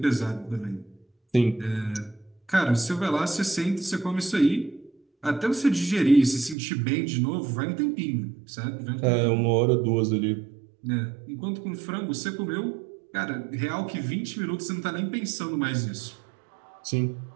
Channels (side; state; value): left; drops out; at 6.6 s